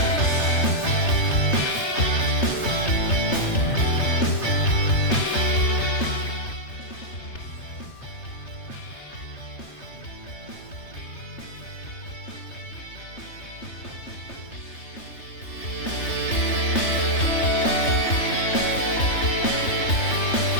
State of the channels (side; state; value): right; late; 3.3 ms